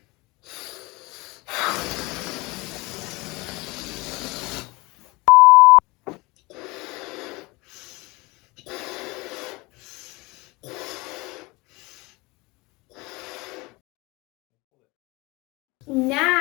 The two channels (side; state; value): right; quieter; 24.1 dB